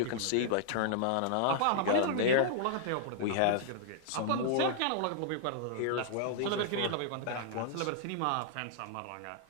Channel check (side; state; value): both; different; correlation -0.01